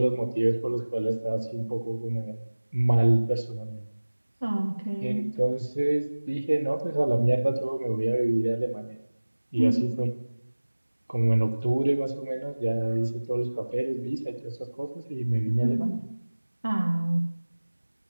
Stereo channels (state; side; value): inverted; both; correlation -1.00